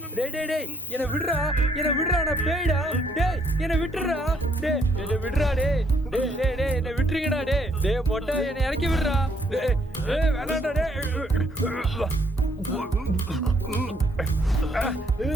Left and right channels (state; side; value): normal; both; correlation 0.69